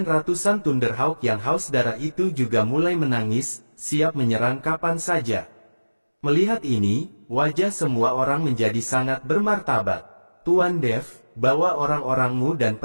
ratusan Thunderhawk yang haus darah itu juga mulai menangis, siap menyerang kapan saja. Melihat ini, wajah semua orang menjadi sangat bermartabat. Tuan Dev, bawa orang-orangmu dan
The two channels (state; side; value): inverted; both; correlation -1.00